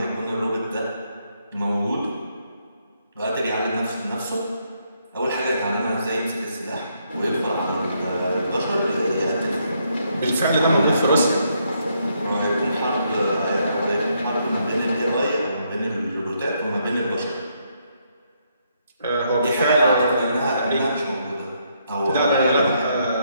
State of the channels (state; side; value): inverted; both; correlation -0.75